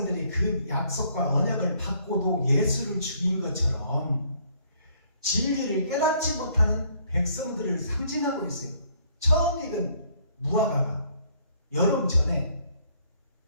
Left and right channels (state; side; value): inverted; both; correlation -0.64